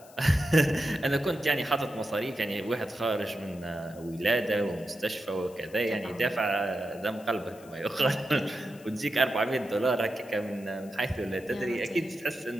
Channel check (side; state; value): left; noise; hiss, 24 dB below the sound